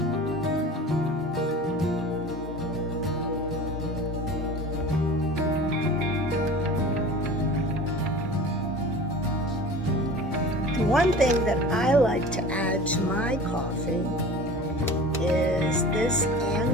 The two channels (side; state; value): both; normal; correlation 0.38